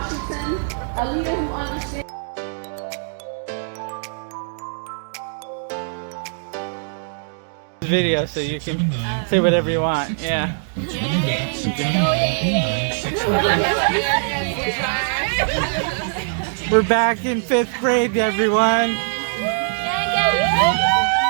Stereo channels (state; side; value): silent; left; digital silence